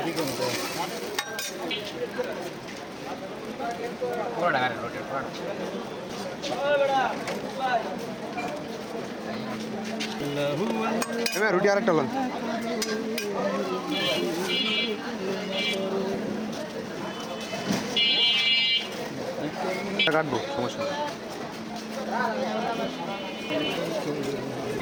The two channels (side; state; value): both; identical; correlation 1.00